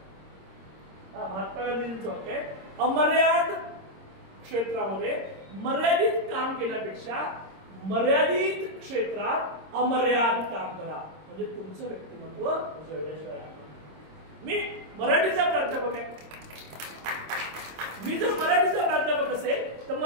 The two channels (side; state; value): left; late; 26 ms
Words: महात्मा गांधींचं वाक्य आहे, अमर्याद क्षेत्रामध्ये मर्यादित काम केल्यापेक्षा मर्यादित क्षेत्रात अमर्याद काम करा, म्हणजे तुमचं व्यक्तिमत्व उजळल्याशिवाय. मी मराठीचा प्राध्यापक आहे. मी जर मराठीचा प्राध्यापक असेल तर